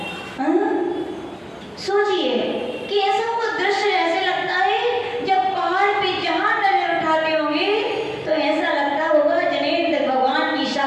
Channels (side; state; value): both; identical; correlation 1.00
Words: सोचिए कि ऐसा वो दृश्य ऐसे लगता है जब पहाड़ पे जहां नजर उठाते होंगे तो ऐसा लगता होगा जनेन्द्र भगवान की